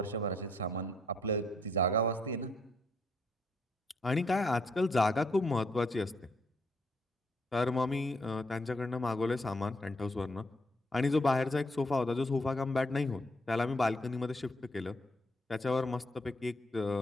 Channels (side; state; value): both; normal; correlation 0.72